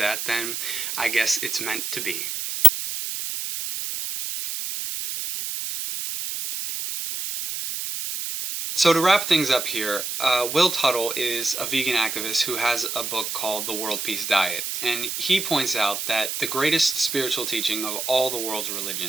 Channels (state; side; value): noise; right; hiss, 4 dB below the sound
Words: then I guess it's meant to be. So to wrap things up here, Will Tuttle is a vegan activist who has a book called The World Peace Diet, and he points out that the greatest spiritual teaching of all the world's